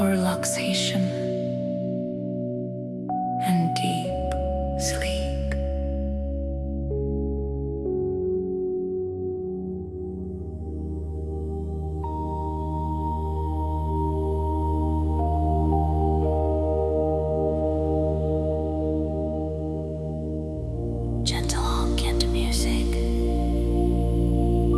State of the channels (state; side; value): identical; both; correlation 1.00